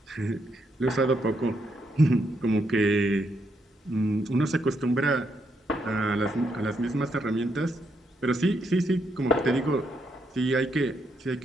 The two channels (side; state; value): both; normal; correlation 0.78